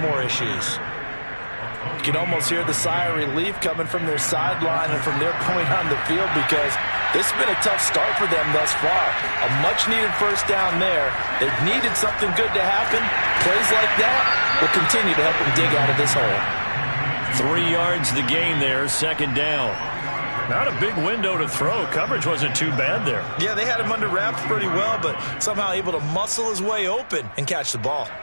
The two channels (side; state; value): both; inverted; correlation -1.00